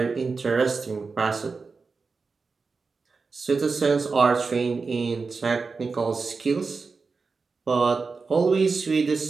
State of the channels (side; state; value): left; quieter; 4.5 dB